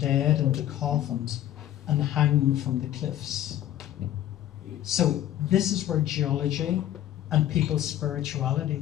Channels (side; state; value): right; quieter; 12.6 dB